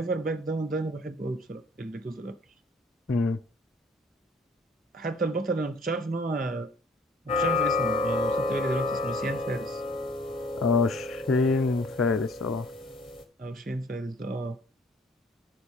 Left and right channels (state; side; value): normal; both; correlation 0.55